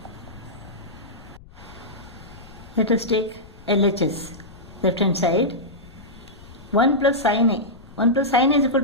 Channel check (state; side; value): noise; left; rumble, 20 dB below the sound